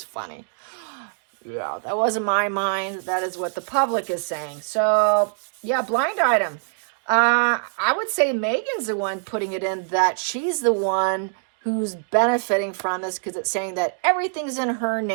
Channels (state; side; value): silent; left; digital silence